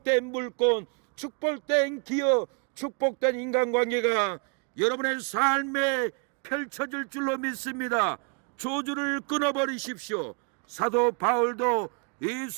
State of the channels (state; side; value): quieter; left; 37.5 dB